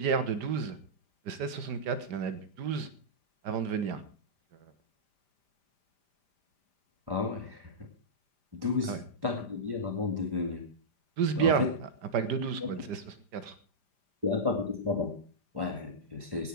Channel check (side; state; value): left; late; 5.0 ms